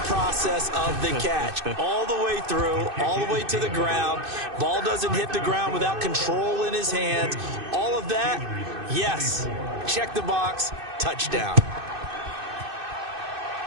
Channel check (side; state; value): left; late; 2.6 ms